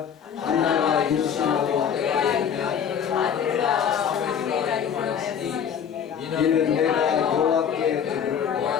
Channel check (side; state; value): right; quieter; 8.0 dB